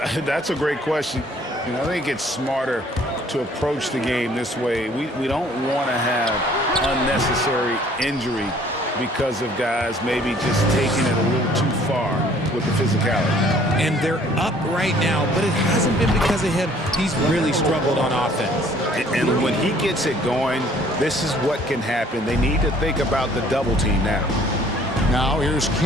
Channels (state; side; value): normal; both; correlation 0.57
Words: That's a great question. I think it's smarter to approach the game this way. We don't want to have unnecessary injury because of guys maybe just taking it a little too far with the physicality. And they're up right now, but it hasn't been because of him. He's really struggled on offense. And when he gets it going, this is what can happen. They need to think about the double team now. Now here's